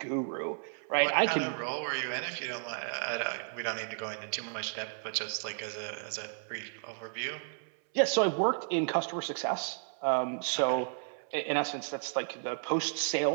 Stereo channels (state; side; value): silent; left; 56 dB below the other